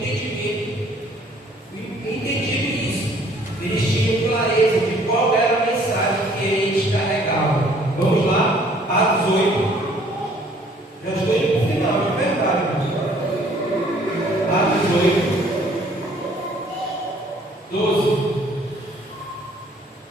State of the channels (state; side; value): normal; both; correlation 0.58